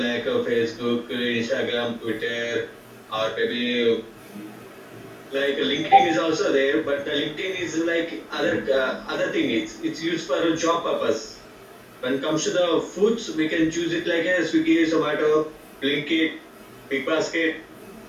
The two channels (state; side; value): identical; both; correlation 1.00